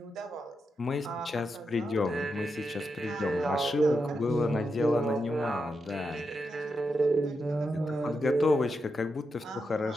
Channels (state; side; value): normal; both; correlation 0.86